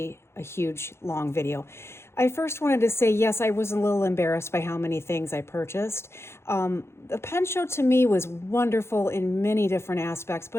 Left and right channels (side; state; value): right; late; 0.12 ms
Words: a huge long video. I first wanted to say, yes, I was a little embarrassed by how many things I purchased. The pen show to me was wonderful in many different aspects,